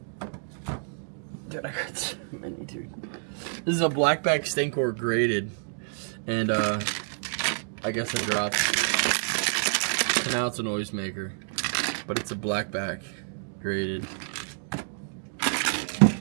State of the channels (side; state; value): left; silent; digital silence